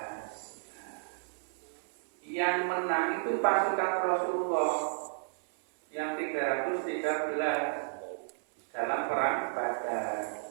Yang menang itu pasukan Rasulullah yang 313 dalam perang Badar.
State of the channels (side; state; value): left; silent; 56 dB below the other